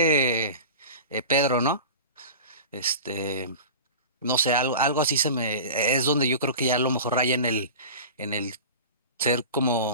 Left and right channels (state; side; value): inverted; both; correlation -0.35